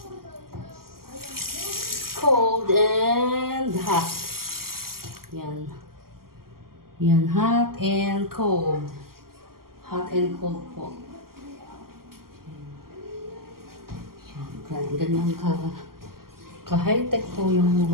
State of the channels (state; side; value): late; left; 0.93 ms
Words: Cold and hot. Yan. Yan, hot and cold. Hot and cold po. Yan, ganyan ka-high-tech po yung